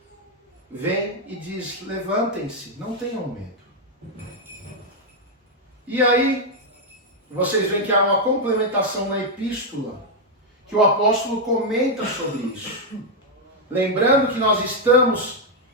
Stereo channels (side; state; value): both; normal; correlation 0.00